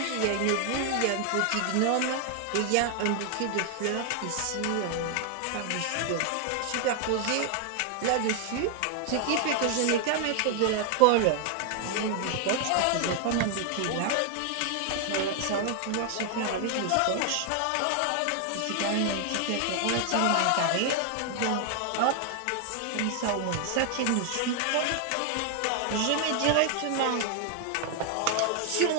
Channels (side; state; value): both; different; correlation 0.00